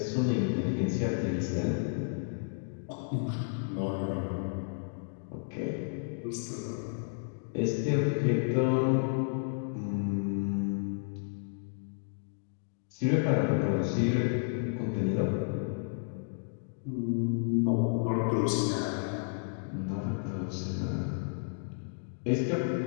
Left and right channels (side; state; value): right; silent; digital silence